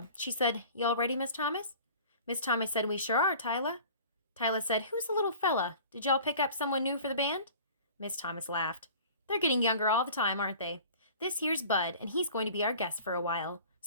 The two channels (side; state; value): both; inverted; correlation -0.44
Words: She said, You all ready, Miss Thomas? Miss Thomas said, We sure are, Tyla. Tyla said, Who's the little fella? Did y'all pick up someone new for the band? Miss Thomas laughed. They're getting younger all the time, aren't they? This here's Bud, and he's going to be our guest for a while,